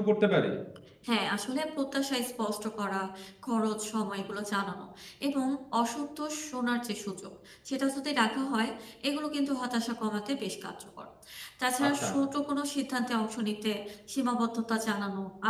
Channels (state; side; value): identical; both; correlation 1.00